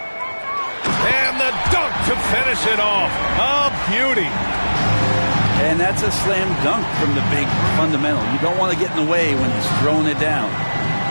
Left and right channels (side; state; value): both; inverted; correlation -1.00